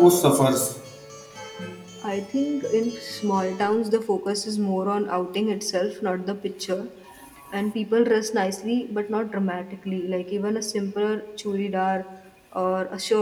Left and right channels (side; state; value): both; identical; correlation 1.00